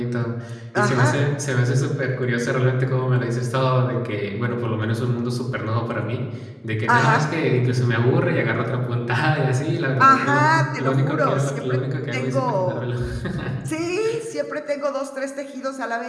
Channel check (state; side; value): identical; both; correlation 1.00